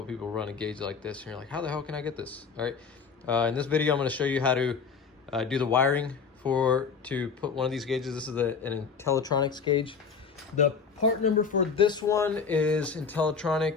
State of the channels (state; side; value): quieter; right; 5.7 dB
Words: people run a gauge like this, and you're like, how the hell can I get this? All right, in this video, I'm gonna show you how to do the wiring to put one of these gauges. This is an Intellitronics gauge. The part number for this one is